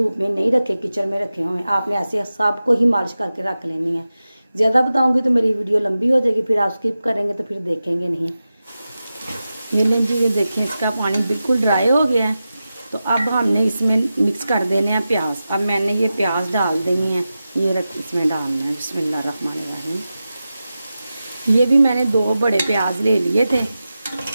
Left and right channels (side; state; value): both; inverted; correlation -0.93